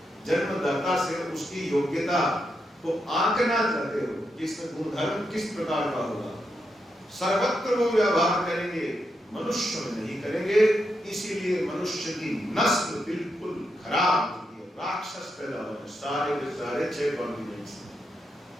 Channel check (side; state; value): both; normal; correlation 0.83